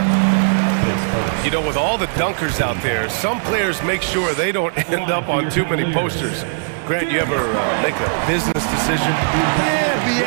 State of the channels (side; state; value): left; silent; digital silence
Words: You know, with all the dunkers out there, some players make sure they don't end up on too many posters. Grant, you ever make a business decision?